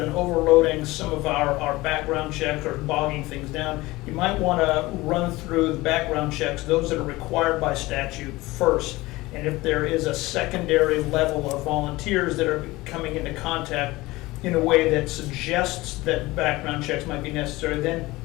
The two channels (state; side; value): quieter; right; 20.0 dB